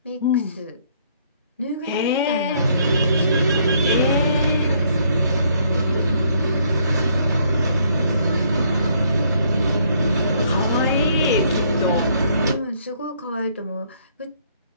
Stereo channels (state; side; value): inverted; both; correlation -0.67